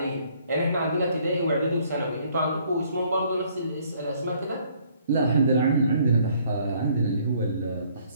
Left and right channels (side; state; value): both; inverted; correlation -0.63